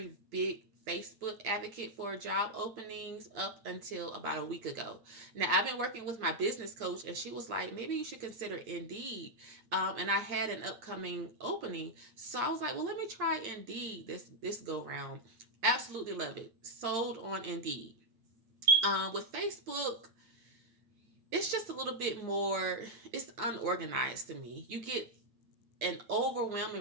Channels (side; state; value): left; late; 8.8 ms